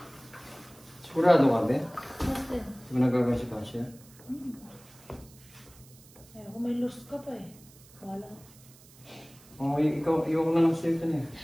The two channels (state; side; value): noise; right; hiss, 24 dB below the sound